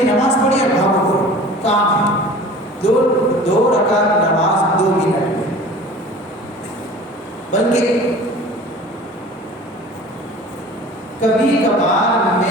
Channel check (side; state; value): both; normal; correlation 0.42